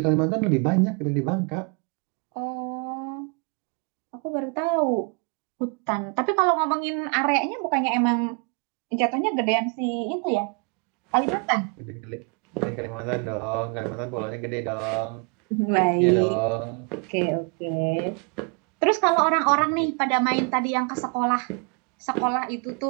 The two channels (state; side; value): quieter; left; 37.0 dB